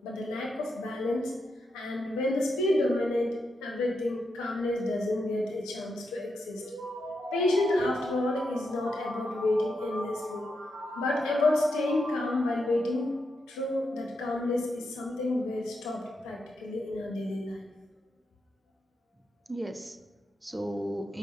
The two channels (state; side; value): normal; both; correlation 0.84